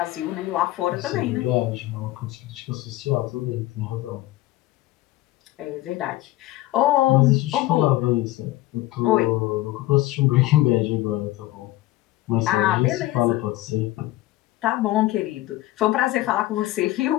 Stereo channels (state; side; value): quieter; right; 17.0 dB